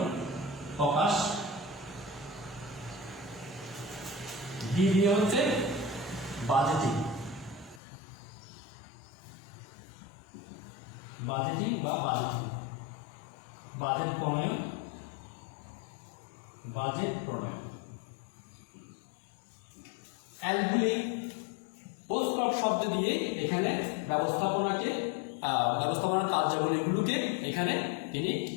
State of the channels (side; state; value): right; drops out; at 7.8 s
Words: প্রকাশ। ডি দিয়ে হচ্ছে বাজেটিং বা বাজেট প্রণয়ন। এলগুলি পোস্ট শব্দ দিয়ে এখানে ব্যবস্থাপনার কার্যাবলীগুলোকে এখানে তিনি